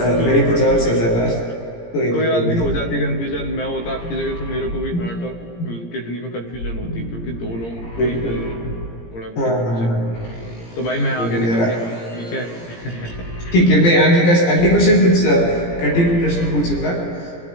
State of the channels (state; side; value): late; right; 17 ms